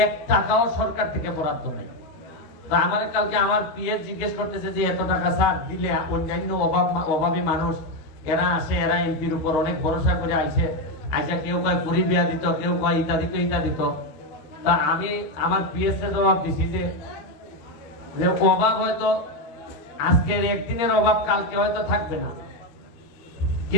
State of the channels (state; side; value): late; right; 13 ms